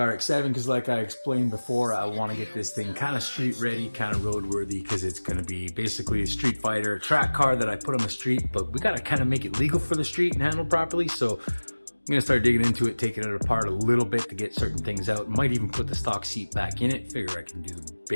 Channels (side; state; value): both; inverted; correlation -1.00